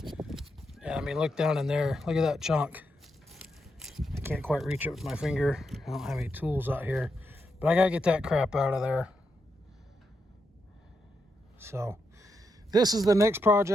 Yeah, I mean, look down in there. Look at that chunk. I can't quite reach it with my finger. I don't have any tools out here. But I gotta get that crap out of there. So, this is the next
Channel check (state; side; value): normal; both; correlation 0.83